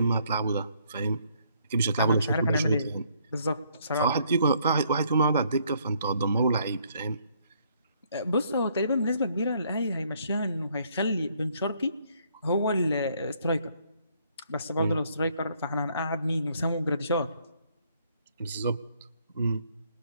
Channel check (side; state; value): both; inverted; correlation -0.67